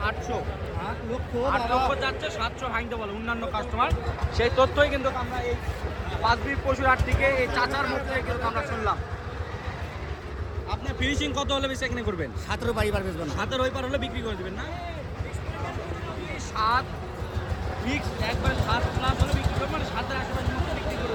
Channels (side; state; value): both; identical; correlation 1.00